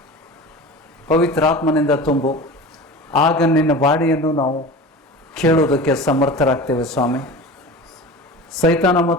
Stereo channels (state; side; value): normal; both; correlation 0.34